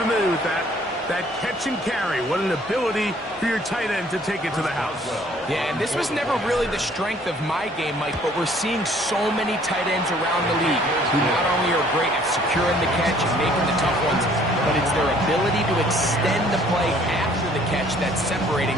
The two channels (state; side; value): normal; both; correlation 0.58